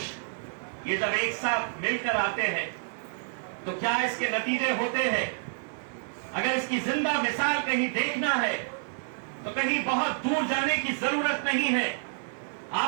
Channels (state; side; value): silent; left; digital silence